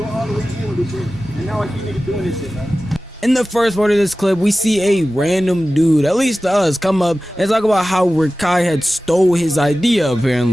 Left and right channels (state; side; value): normal; both; correlation 0.95